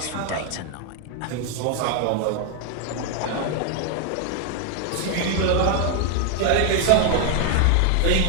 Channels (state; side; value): different; both; correlation 0.00